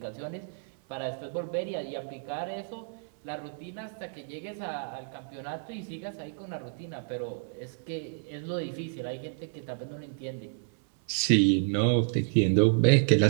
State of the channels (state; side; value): silent; left; 58 dB below the other